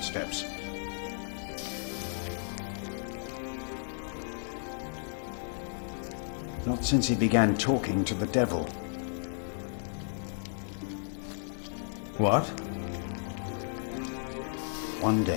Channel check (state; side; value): silent; right; 56 dB below the other